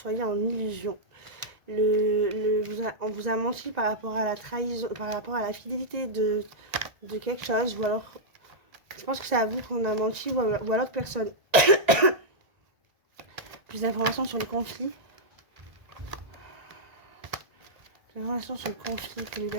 en illusion. On vous a menti par rapport à la trahison, par rapport à la fidélité de quelque chose, ou alors je pense que c'est à vous qu'on a menti, ou à l'autre personne. Plus d'informations sur le conflit. Plus d'informations sur le conflit pour les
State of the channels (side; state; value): left; late; 1.4 ms